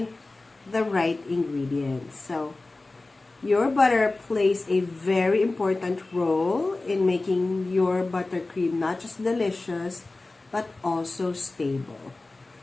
the right ingredients. So, your butter plays a very important role in making your buttercream not just delicious, but also stable.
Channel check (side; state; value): right; quieter; 3.2 dB